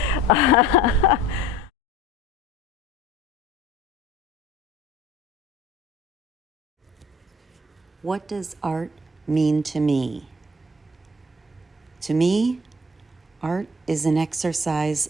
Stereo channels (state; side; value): normal; both; correlation 0.49